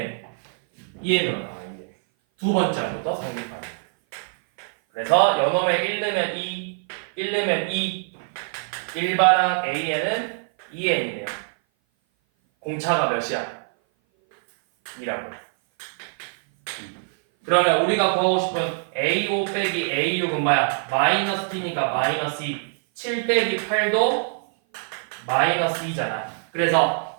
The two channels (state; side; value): silent; left; 57 dB below the other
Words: 나와. 2n. 두 번째 항부터 성립하는. 그래서 연놈에 1 넣으면 2, 1 넣으면 2, 일반항 A에는 2n이네요. 공차가 몇이야? 2라고. 그러면 우리가 구하고 싶은 A5 빼기 A6은 뭐야? 마이너스 T니까 마이너스 2. 7 빼기 8도 마이너스 2잖아.